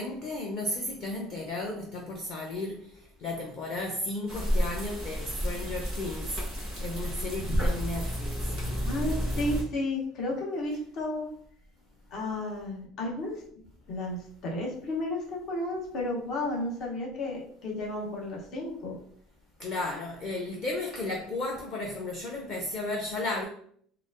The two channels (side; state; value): both; normal; correlation 0.57